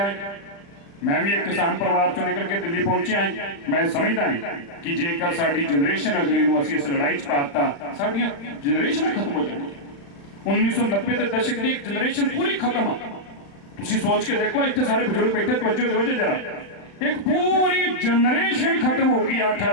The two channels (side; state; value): right; late; 35 ms